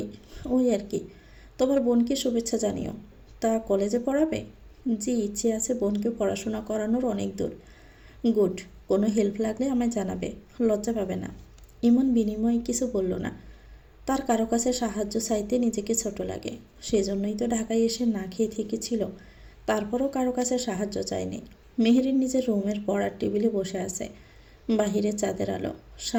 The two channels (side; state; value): both; identical; correlation 1.00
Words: ওই আর কি। তোমার বোনকে শুভেচ্ছা জানিও। তা কলেজে পড়াবে? জি, ইচ্ছে আছে বোনকে পড়াশোনা করানোর অনেক দূর। গুড। কোনো হেল্প লাগলে আমায় জানাবে, লজ্জা পাবে না। ইমন বিনিময়ে কিছু বলল না। তার কারো কাছে সাহায্য চাইতে নিজেকে ছোট লাগে, সেজন্যই তো ঢাকায় এসে না খেয়ে থেকেছিল। তারপরও কারো কাছে সাহায্য চায়নি। মেহেরিন নিজের রুমের পড়ার টেবিলে বসে আছে। বাহিরে চাঁদের আলো,